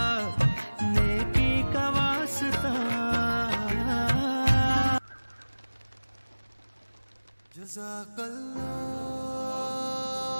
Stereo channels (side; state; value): both; inverted; correlation -1.00